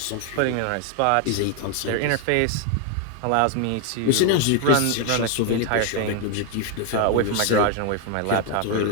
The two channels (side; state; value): both; different; correlation 0.01